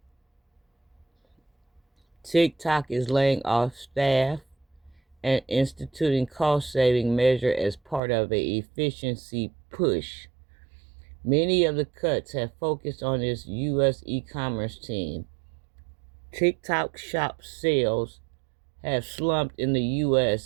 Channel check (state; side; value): drops out; left; at 8.0 s